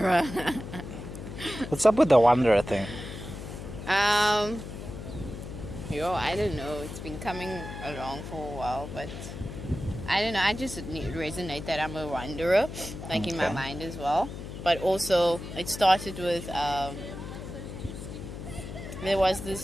What's up with the wanderer thing? I don't know. It's been coming along for a while, but I don't know. I just resonate that I'm a wanderer, like in my mind as well. But also, it started with there was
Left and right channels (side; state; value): left; noise; hum, 9 dB below the sound